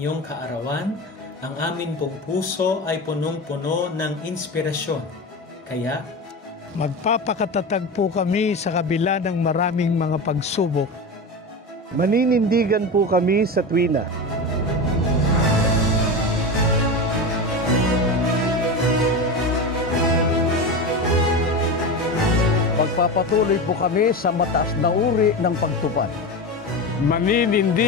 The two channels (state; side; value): normal; both; correlation 0.23